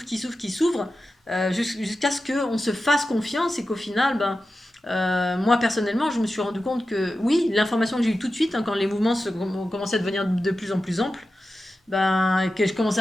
qui s'ouvrent, qui s'ouvrent, jusqu'à ce qu'on se fasse confiance et qu'au final, ben, moi personnellement, je me suis rendu compte que oui, l'information que j'ai eue tout de suite, hein, quand les mouvements ont commencé à devenir de plus en plus amples, ben, que je commençais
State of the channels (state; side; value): normal; both; correlation 0.92